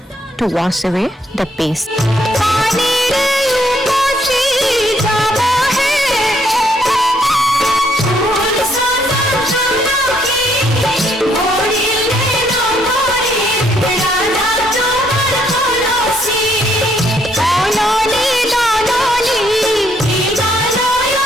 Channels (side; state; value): both; normal; correlation 0.70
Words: to wash away the paste.